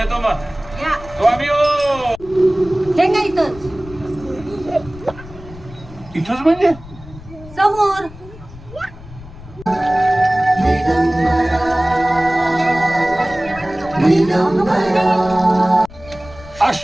मग. स्वामी हो. हे काय इथंच इथंच म्हणजे समोर.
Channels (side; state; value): left; noise; rumble, 18 dB below the sound